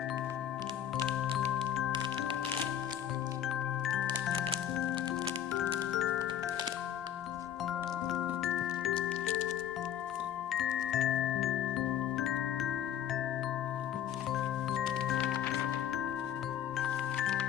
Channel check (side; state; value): right; quieter; 10.2 dB